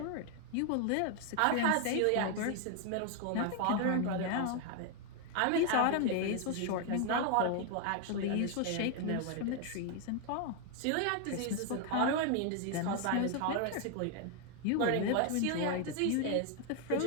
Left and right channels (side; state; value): both; different; correlation 0.01